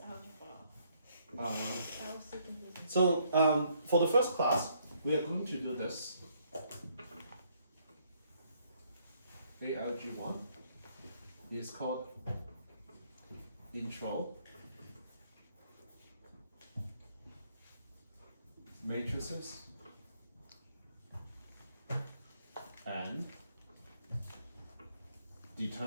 algebra. I was so confused. So for the first class, we are going to do this. ALG1 is called Intro, Matrices, and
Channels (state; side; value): inverted; both; correlation -0.69